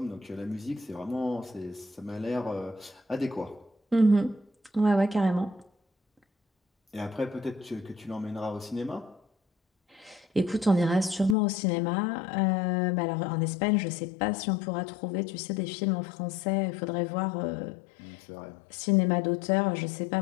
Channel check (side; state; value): right; drops out; at 11.4 s